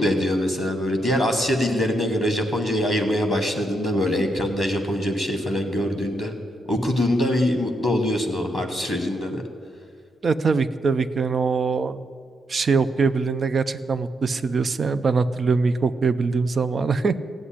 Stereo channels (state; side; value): normal; both; correlation 0.80